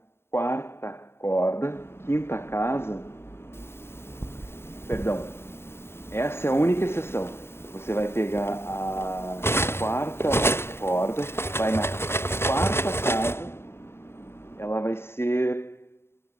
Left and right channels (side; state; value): right; late; 0.12 ms